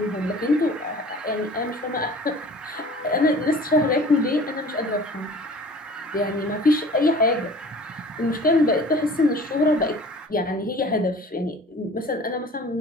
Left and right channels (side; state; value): both; normal; correlation 0.45